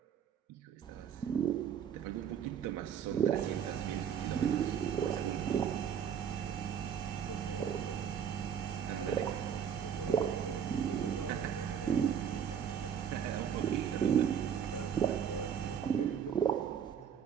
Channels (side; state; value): left; quieter; 8.1 dB